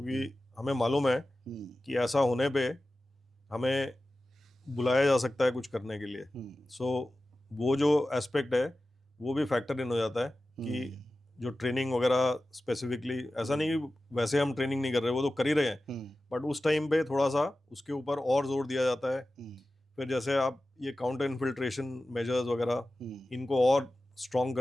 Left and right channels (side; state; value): both; normal; correlation 0.95